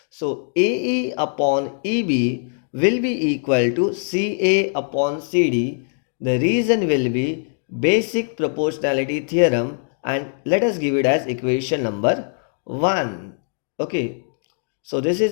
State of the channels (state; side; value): silent; right; digital silence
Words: So AE upon EB will be equal to CA upon CD. The reason will be basic proportionality theorem, and let us give it as equation number 1. Okay. So this is